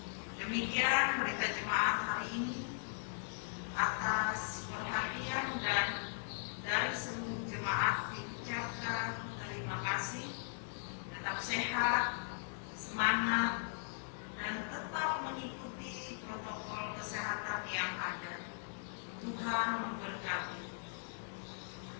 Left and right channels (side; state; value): right; silent; digital silence